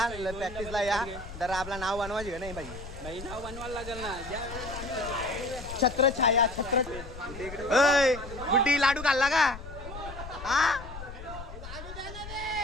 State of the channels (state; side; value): noise; left; rumble, 12 dB below the sound